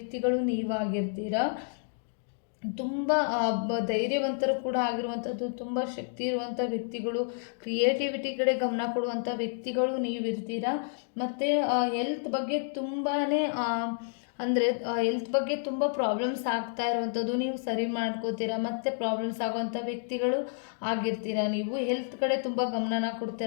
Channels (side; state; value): right; silent; digital silence